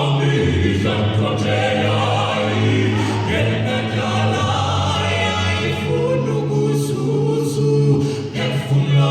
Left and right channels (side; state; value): both; identical; correlation 1.00